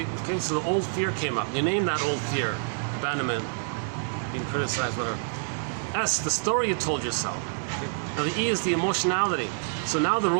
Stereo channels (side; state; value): left; silent; 55 dB below the other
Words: okay, so the old fear came up. You name that old fear. Abandonment, being criticized, whatever. S, the story you told yourself. Okay? Now the E is the emotionality. So now the